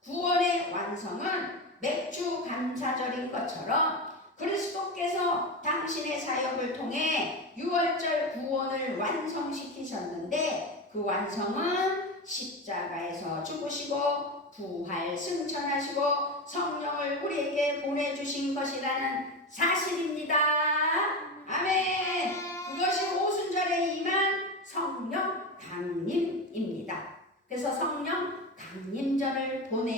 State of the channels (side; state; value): both; normal; correlation 0.20